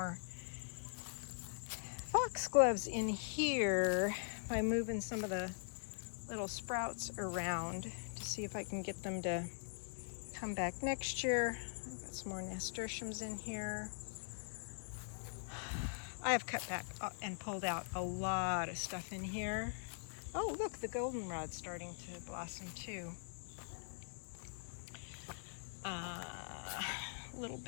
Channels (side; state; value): right; silent; digital silence